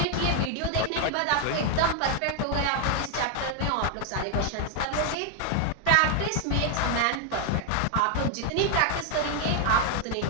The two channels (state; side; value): different; both; correlation 0.00